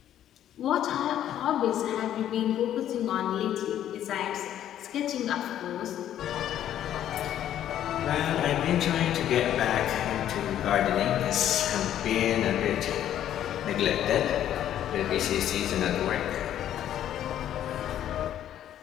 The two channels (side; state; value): right; quieter; 11.1 dB